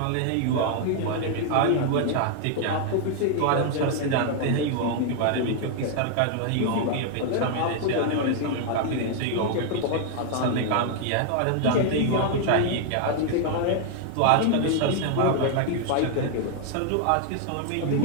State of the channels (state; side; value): different; both; correlation 0.00